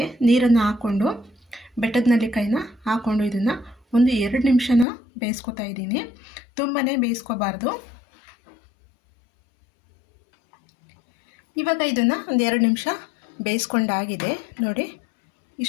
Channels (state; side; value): drops out; right; at 4.9 s